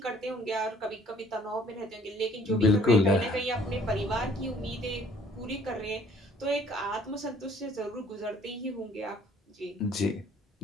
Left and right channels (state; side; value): normal; both; correlation 0.58